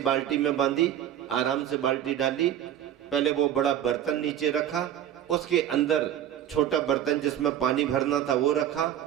में बांधी, आराम से बाल्टी डाली, पहले वो बड़ा बर्तन नीचे रखा, उसके अंदर छोटा बर्तन जिसमें पानी भरना था वो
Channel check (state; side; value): quieter; left; 11.0 dB